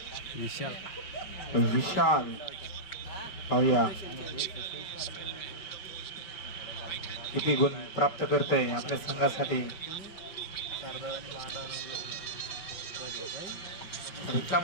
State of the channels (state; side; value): late; right; 5.3 ms